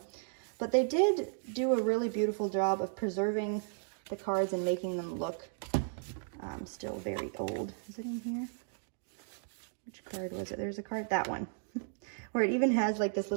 but they did do a really beautiful job of preserving the cards and making them look still very old. Is it in here? Which card was it? There's a card, that one, where it even has like this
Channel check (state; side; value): silent; left; digital silence